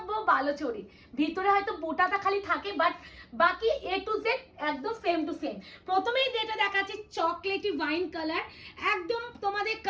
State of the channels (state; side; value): identical; both; correlation 1.00